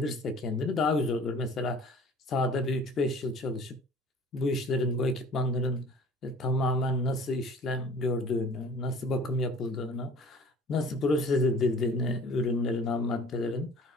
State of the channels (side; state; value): both; normal; correlation 0.47